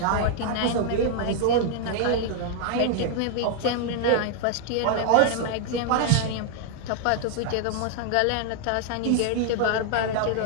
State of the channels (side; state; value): both; different; correlation 0.00